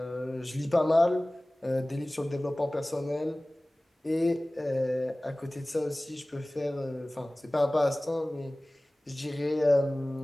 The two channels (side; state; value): both; normal; correlation 0.98